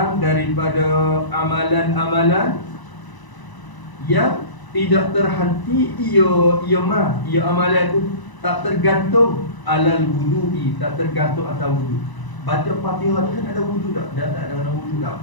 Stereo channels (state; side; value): late; right; 1.0 ms